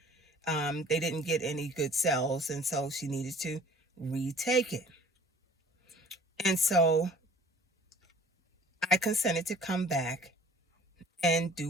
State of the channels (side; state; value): both; normal; correlation 0.50